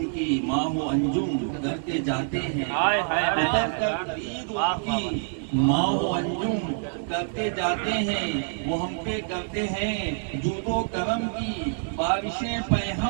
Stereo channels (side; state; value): left; silent; digital silence